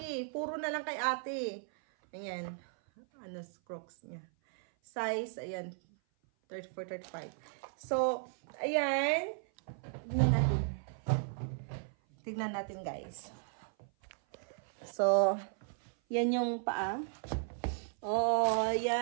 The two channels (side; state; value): left; silent; 54 dB below the other